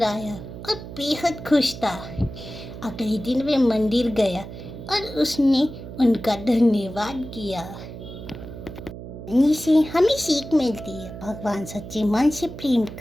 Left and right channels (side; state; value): right; noise; hum, 12 dB below the sound